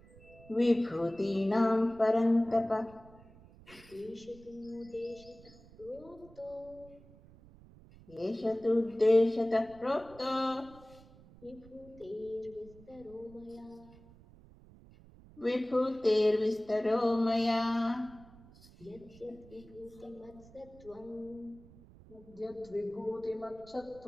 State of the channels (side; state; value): right; noise; rumble, 22 dB below the sound